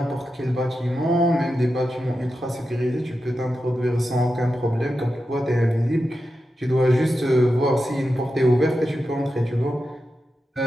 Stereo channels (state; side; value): normal; both; correlation 0.90